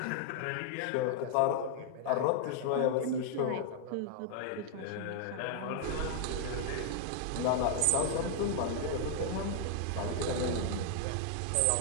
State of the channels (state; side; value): different; both; correlation -0.01